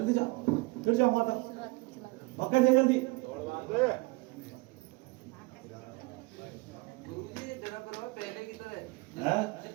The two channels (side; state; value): left; quieter; 25.3 dB